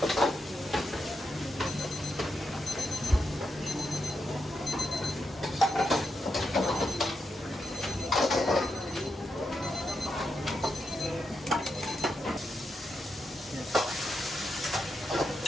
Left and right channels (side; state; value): both; normal; correlation 0.85